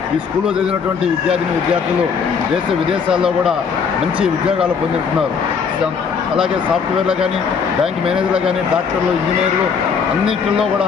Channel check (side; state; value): right; quieter; 6.1 dB